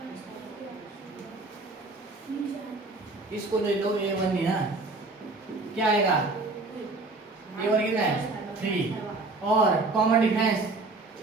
इसको ले लो A1 ही ना क्या आएगा A1 कितना है 3 और कॉमन डिफरेंस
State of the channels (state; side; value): quieter; left; 3.3 dB